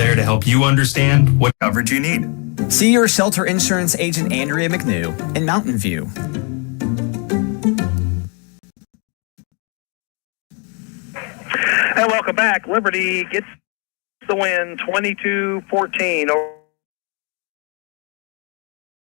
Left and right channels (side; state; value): right; quieter; 35.4 dB